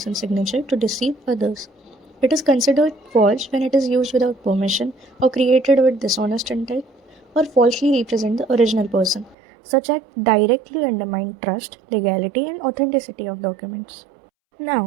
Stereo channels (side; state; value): left; drops out; at 9.3 s